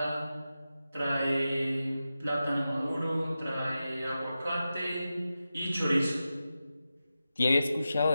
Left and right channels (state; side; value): inverted; both; correlation -0.92